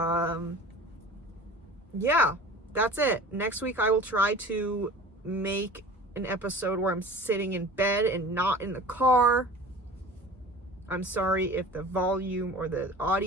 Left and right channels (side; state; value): both; normal; correlation 0.40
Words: Yeah, that's it. Next week I will try to make an episode where I'm sitting in bed and not in the car. I'm sorry if the volume or the